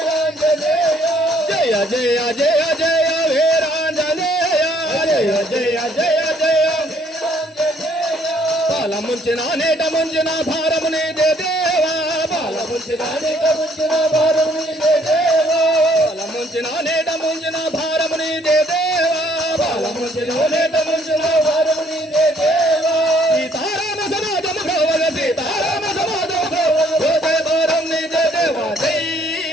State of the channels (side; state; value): both; normal; correlation 0.64